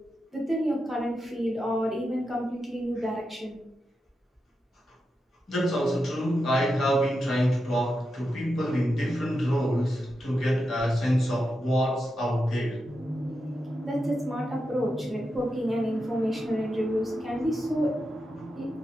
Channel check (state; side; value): normal; both; correlation 0.88